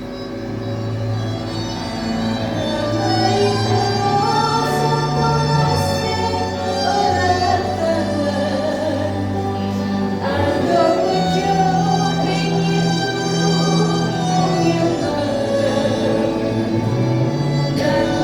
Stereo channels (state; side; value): identical; both; correlation 1.00